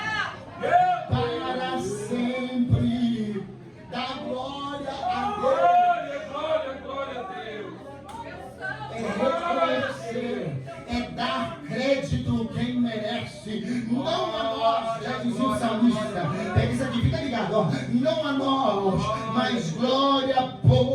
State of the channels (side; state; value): both; identical; correlation 1.00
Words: Para sempre. Dá glória a Deus. Glória a Deus. É reconhecer, é dar crédito quem merece, não a nós, já dizia o salmista. Pega isso aqui, fica ligado, ó. Não a nós, mas glória,